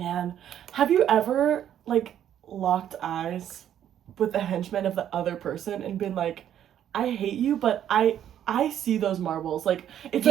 have you ever, like, locked eyes with the henchman of the other person and been like, I hate you, but I see those marbles. Like, it's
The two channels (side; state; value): left; quieter; 10.4 dB